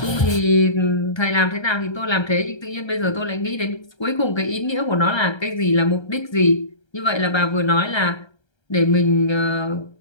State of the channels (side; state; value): right; late; 1.3 ms